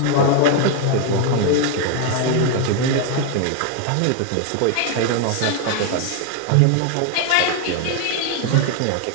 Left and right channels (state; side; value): different; both; correlation 0.01